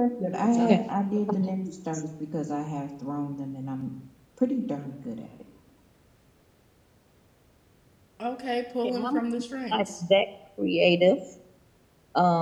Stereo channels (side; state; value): both; identical; correlation 1.00